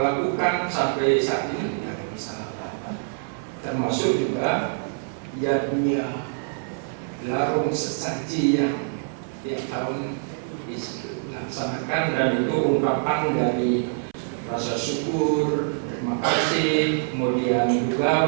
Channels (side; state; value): left; silent; 62 dB below the other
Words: lakukan sampai saat ini tidak ada masalah. Termasuk juga jadinya larung sesaji yang tiap tahun dilaksanakan, dan itu ungkapan dari rasa syukur, terima kasih, kemudian